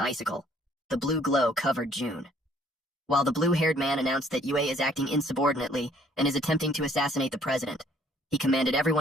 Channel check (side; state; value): both; normal; correlation 0.61